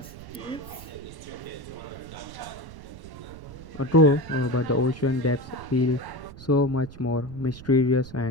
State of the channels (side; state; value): right; noise; rumble, 15 dB below the sound